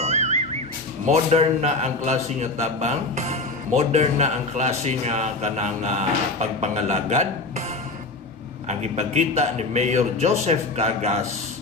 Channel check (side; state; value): right; quieter; 3.3 dB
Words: Modern na ang klase nga tabang, modern na ang klase nga kanang pagpangalagad. Ang ipagkita ni Mayor Joseph Cagas